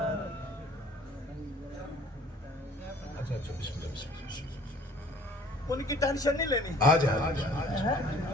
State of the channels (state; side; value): normal; both; correlation 0.53